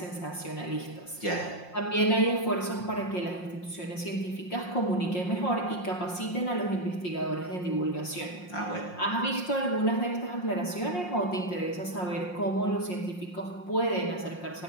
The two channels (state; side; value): late; right; 5.6 ms